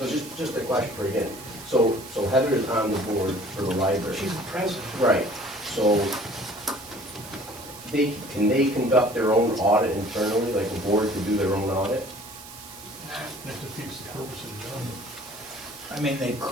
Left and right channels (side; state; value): right; noise; hiss, 16 dB below the sound